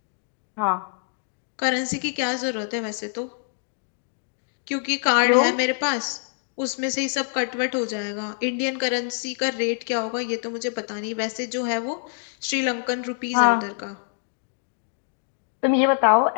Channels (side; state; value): right; silent; digital silence